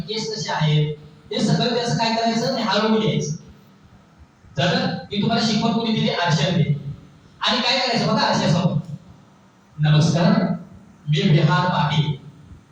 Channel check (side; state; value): both; identical; correlation 1.00